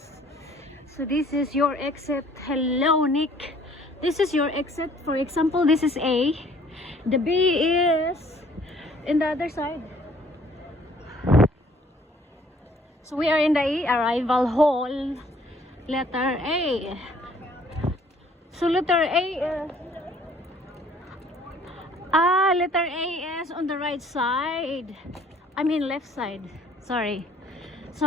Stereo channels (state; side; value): normal; both; correlation 0.58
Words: So this is your exit. Hello Nick. This is your exit. For example, this is A. The B is in the other side. So we are in the A, arrival hall. Letter A. So letter A letter A is on the right side. I mean left side. Sorry.